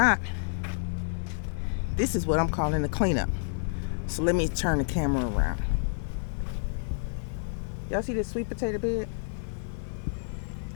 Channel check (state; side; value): silent; right; digital silence